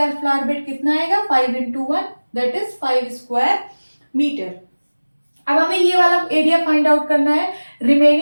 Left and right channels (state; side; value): inverted; both; correlation -1.00